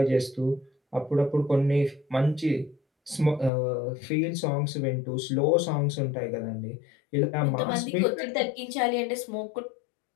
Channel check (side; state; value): right; drops out; at 3.5 s